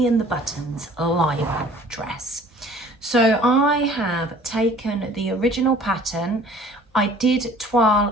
and the Buttons Lyra dress. So I have taken the original pattern. I did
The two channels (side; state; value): both; normal; correlation 0.51